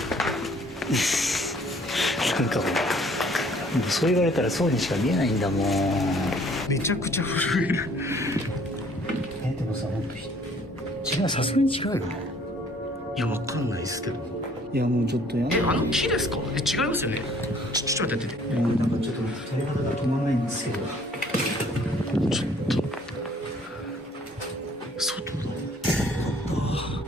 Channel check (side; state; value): both; normal; correlation 0.58